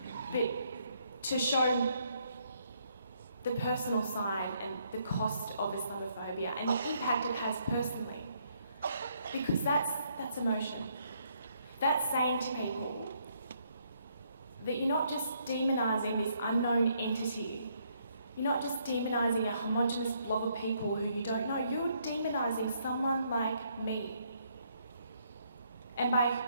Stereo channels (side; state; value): both; inverted; correlation -0.71